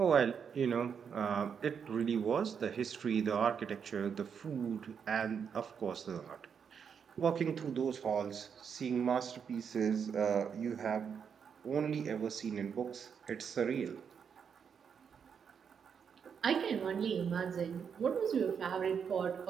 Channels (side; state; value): left; quieter; 7.0 dB